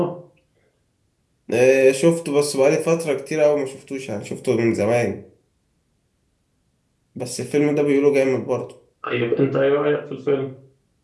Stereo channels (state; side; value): identical; both; correlation 1.00